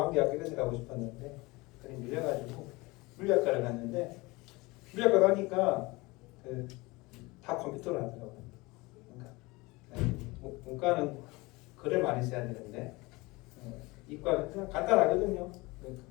이런 데 가고 싶었는데 그래 밀려가지고 물리학과를 갔는데 물리학과 가니까 다 컴퓨터를 하더라고요. 그러니까 문과는 글을 많이 써야 되는데 이과는 그냥 간단하거든요.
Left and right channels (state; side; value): quieter; right; 23.2 dB